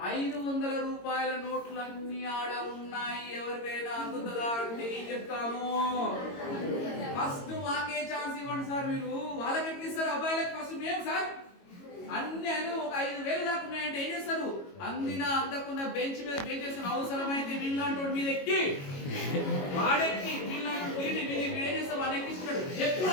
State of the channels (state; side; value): late; right; 22 ms